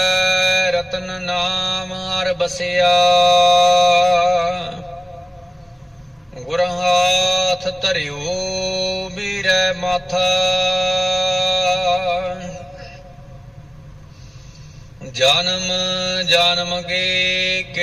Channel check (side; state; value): both; normal; correlation 0.97